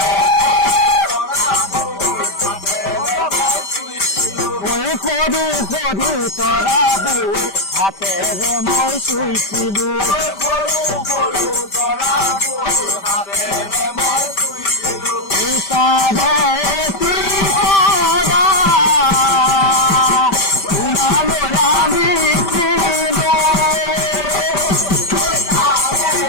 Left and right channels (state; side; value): late; right; 5.1 ms